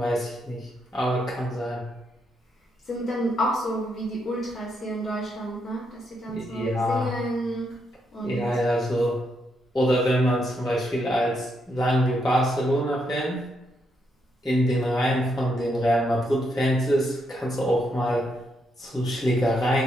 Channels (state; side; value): normal; both; correlation 0.79